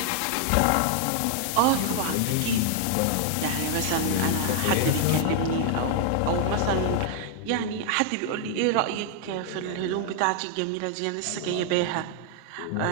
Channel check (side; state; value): both; different; correlation 0.00